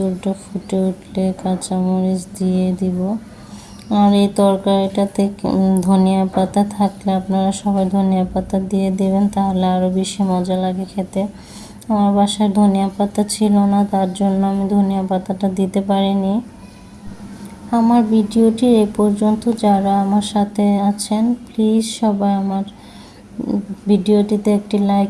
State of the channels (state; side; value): identical; both; correlation 1.00